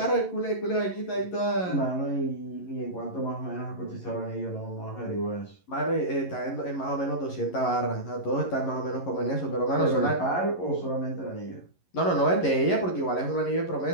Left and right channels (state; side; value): late; right; 11 ms